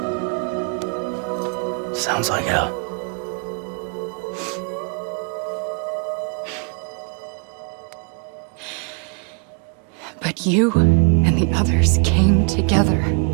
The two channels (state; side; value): quieter; left; 39.8 dB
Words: Sounds like hell. But you and the others came together,